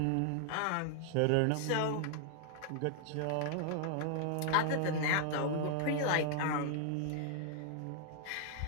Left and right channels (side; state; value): both; different; correlation -0.01